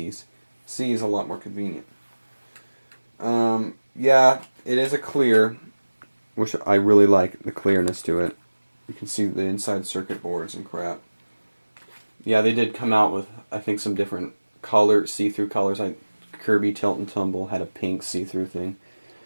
C is a lot more convenient. Yeah, it is a clear, which I really like the clearness to it. You can see the inside circuit boards and crap. Yeah, they did come out with, I think, some different see-through colors. Kirby Tilt and Tumble had a pink see-through thing.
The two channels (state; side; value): inverted; both; correlation -1.00